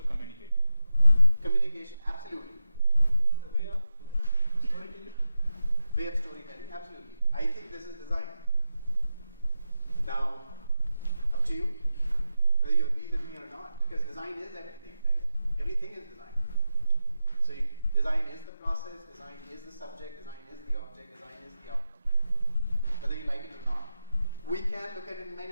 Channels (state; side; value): inverted; both; correlation -0.91